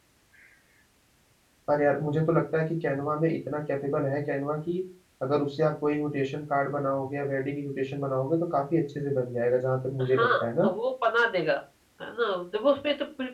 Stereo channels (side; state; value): both; identical; correlation 1.00